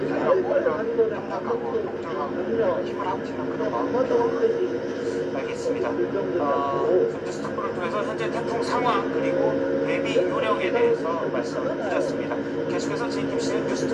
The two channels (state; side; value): identical; both; correlation 1.00